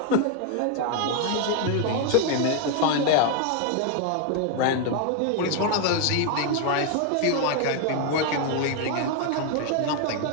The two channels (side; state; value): both; different; correlation 0.01